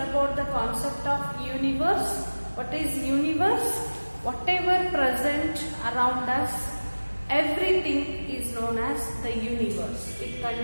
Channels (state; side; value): inverted; both; correlation -1.00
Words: the concept of universe. What is universe? Whatever present around us, everything is known as the universe. It